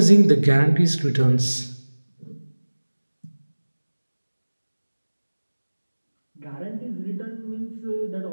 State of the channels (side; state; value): both; inverted; correlation -1.00